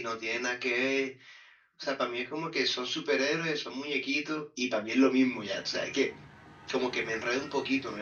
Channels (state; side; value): identical; both; correlation 1.00